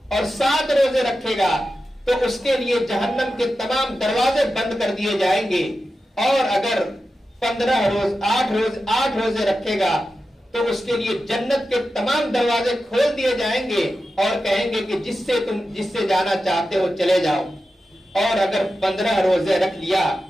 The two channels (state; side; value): normal; both; correlation 0.91